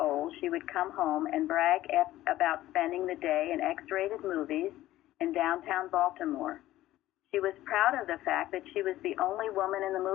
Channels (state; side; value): quieter; right; 15.1 dB